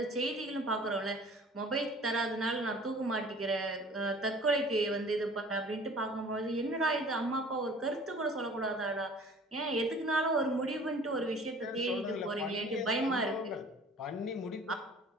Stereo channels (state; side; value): normal; both; correlation 0.48